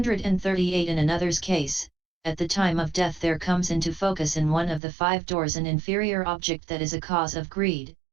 In another's case, at the time of death there comes into focus in one of the 5 doors an inferior object that is a cause of greed,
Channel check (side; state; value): left; drops out; at 4.8 s